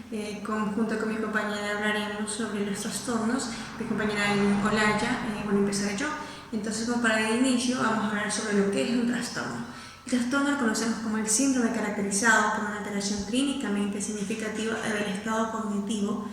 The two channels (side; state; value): both; identical; correlation 1.00